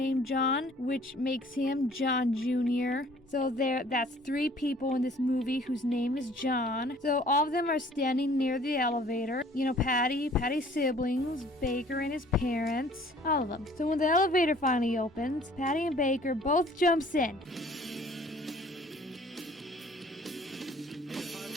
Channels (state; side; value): normal; both; correlation 0.54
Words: John, which makes him John Jr. So that's 3 people in this movie whose name is John. So all of them are standing near the elevator. You know, Patty's siblings, Baker and his parents, all of them. So when the elevator finally opens, Patty and Baker both jumps in.